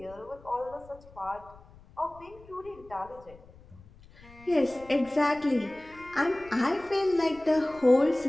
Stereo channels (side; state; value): left; noise; rumble, 23 dB below the sound